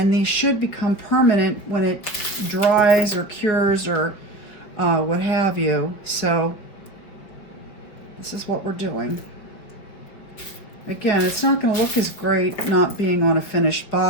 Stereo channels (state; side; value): late; right; 5.5 ms